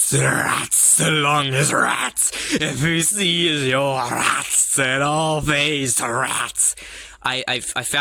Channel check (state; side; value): identical; both; correlation 1.00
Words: rats along as rats. If you see is your rats, then all face rats. I